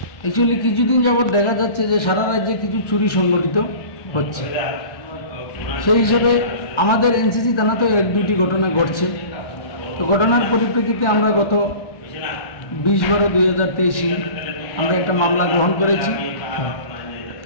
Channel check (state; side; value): late; right; 1.1 ms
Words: অ্যাকচুয়ালি কিছুদিন যাবৎ দেখা যাচ্ছে যে সারা রাজ্যে কিছু চুরি সংগঠিত হচ্ছে, সেই হিসেবে আমাদের এনসিসি থানাতেও 1-2টি ঘটনা ঘটছে। তো ঘটনার পরিপ্রেক্ষিতে আমরা গত 20/12/2023 আমরা একটা মামলা গ্রহণ করেছি।